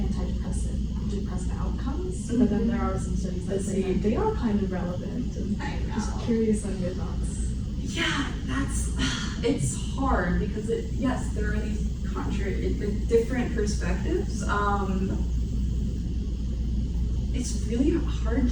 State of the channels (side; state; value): both; identical; correlation 1.00